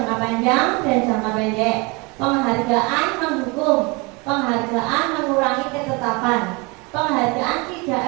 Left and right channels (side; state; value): left; quieter; 27.6 dB